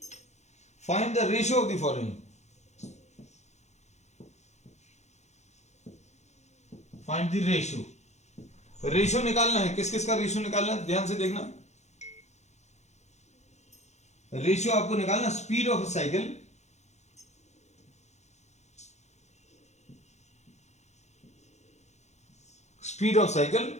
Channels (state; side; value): late; right; 0.33 ms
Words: find the ratio of the following. Find the ratio. Ratio निकालना है. किस किस का रेशियो निकालना है, ध्यान से देखना. रेशियो आपको निकालना speed of cycle